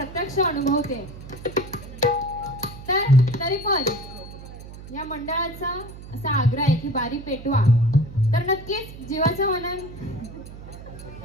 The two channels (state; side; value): noise; right; hum, 14 dB below the sound